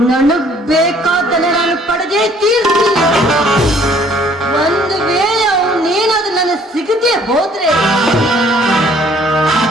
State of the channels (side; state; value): both; normal; correlation 0.59